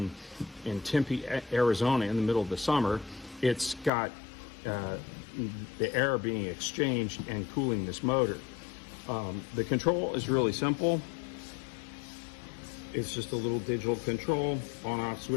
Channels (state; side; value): drops out; right; at 3.9 s